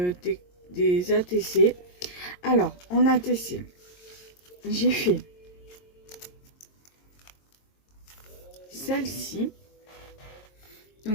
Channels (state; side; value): late; right; 22 ms